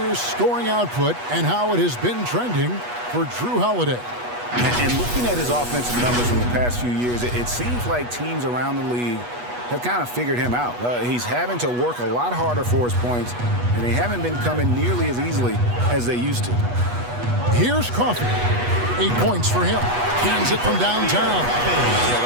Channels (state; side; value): late; left; 8.2 ms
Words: scoring output and how it has been trending for Drew Holiday. And looking at his offensive numbers from the past few years, it seems like teams around the league have kind of figured him out. He's having to work a lot harder for his points, and they haven't been coming nearly as easily as they used to. Here's Coffey. 8 points for him. Cans it from downtown.